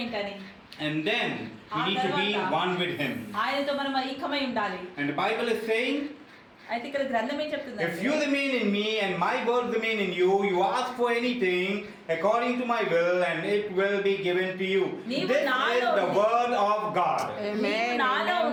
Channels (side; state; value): both; identical; correlation 1.00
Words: ఏంటని, And then we need to be one with him. ఆయనతో మనం ఐక్యమై ఉండాలి. And the Bible is saying, అయితే ఇక్కడ గ్రంథం ఏం చెప్తుంది? if you remain in me and my words remain in you, you ask for anything according to my will and it will be given to you. This is the word of God. నీవు నాలో